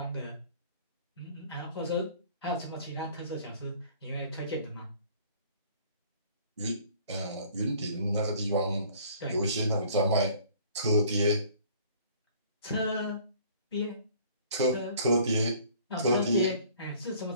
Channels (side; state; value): both; inverted; correlation -0.53